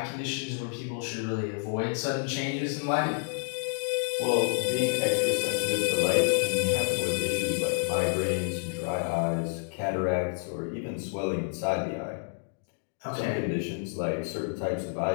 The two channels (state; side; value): silent; right; digital silence